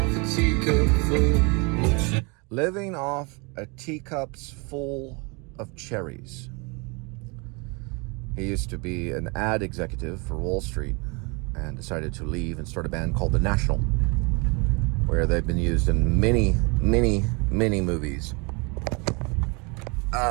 a teacup full. Living off a teacup's full of cherries. He used to be an ad executive for Wall Street and decided to leave and start a band called The National, where they've been used in many movies.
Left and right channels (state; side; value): quieter; left; 30.3 dB